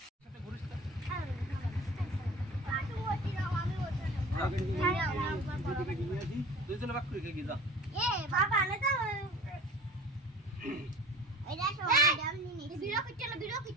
দুইজনে বাক করে গিয়ে যা এ বাবা না তো এটা তো ডামনি নি ভিডিও করতে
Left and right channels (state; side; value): normal; both; correlation 0.41